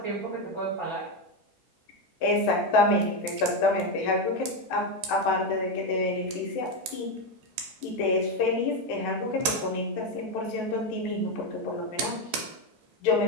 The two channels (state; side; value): normal; both; correlation 0.09